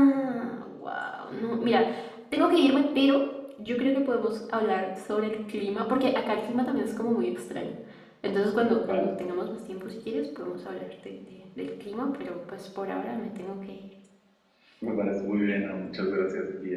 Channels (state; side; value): identical; both; correlation 1.00